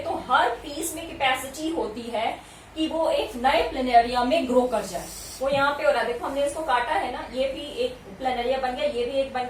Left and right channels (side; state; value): both; identical; correlation 1.00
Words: तो हर पीस में कैपेसिटी होती है कि वो एक नए प्लेनेरिया में ग्रो कर जाए. वो यहाँ पे हो रहा है. देखो हमने इसको काटा है ना, ये भी एक प्लेनेरिया बन गया, ये भी एक बन